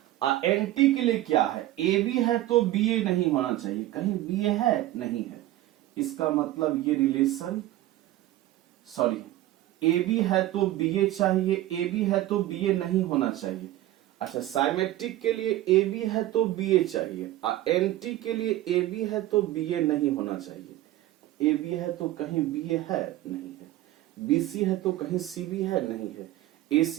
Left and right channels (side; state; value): left; quieter; 15.2 dB